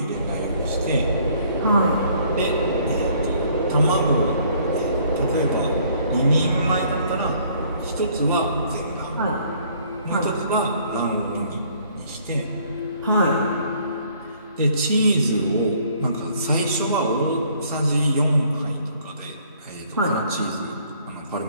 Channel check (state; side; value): inverted; both; correlation -0.61